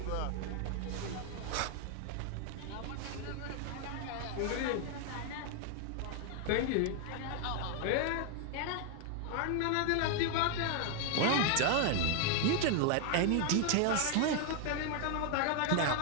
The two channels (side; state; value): both; different; correlation 0.00